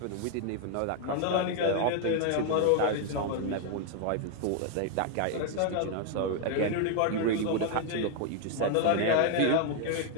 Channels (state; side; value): different; both; correlation 0.00